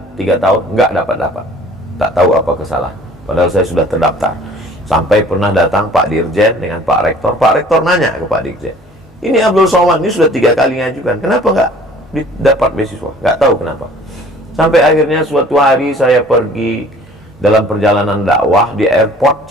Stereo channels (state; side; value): normal; both; correlation 0.50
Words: 3 tahun nggak dapat. Tak tahu apa kesalahan. Padahal saya sudah terdaftar. Sampai pernah datang Pak Dirjen dengan Pak Rektor. Pak Rektor nanya ke Pak Dirjen, ini Abdul Somad ini sudah 3 kali ngajukan, kenapa nggak dapat beasiswa? Nggak tahu kenapa. Sampai akhirnya suatu hari saya pergi dalam perjalanan dakwah di airport